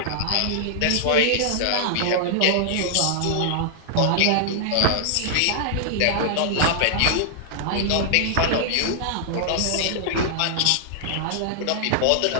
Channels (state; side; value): different; both; correlation -0.01